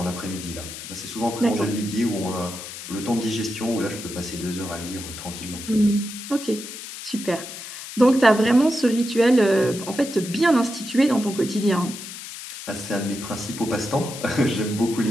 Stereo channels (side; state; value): left; noise; hiss, 11 dB below the sound